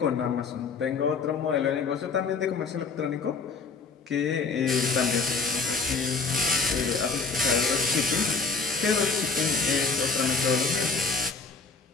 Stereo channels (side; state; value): right; quieter; 4.5 dB